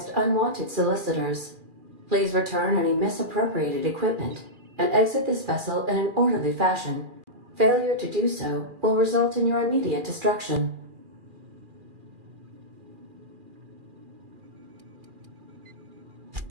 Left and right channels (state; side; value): late; left; 2.4 ms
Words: unwanted solicitors. Please return any misappropriated equipment and exit this vessel in an orderly fashion. Failure to do so will result in your immediate destruction.